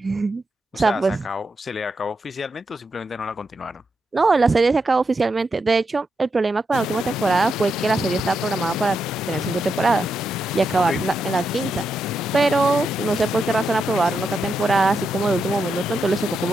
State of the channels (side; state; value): both; normal; correlation 0.84